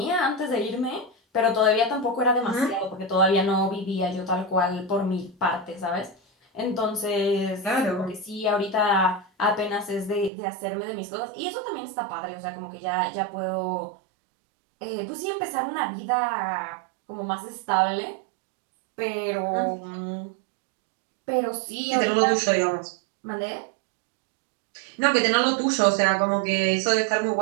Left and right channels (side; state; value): left; drops out; at 10.3 s